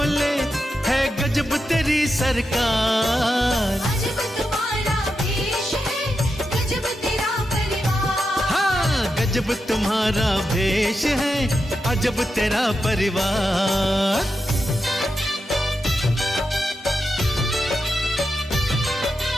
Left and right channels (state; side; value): normal; both; correlation 0.87